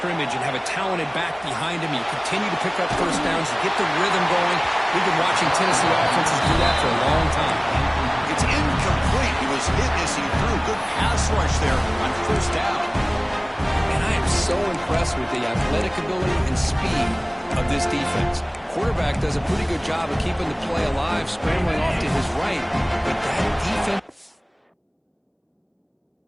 and have a talented back behind them. You continue to pick up first downs. You get the rhythm going. We've been watching Tennessee offenses do that for a long time. It's incomplete. He was hit as he threw. Good pass rush there on first down. And I am so impressed with the athletic ability and speed of this defense. Quarterback does a pretty good job of keeping the play alive, scrambling off to his right. But that defense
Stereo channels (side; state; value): both; identical; correlation 1.00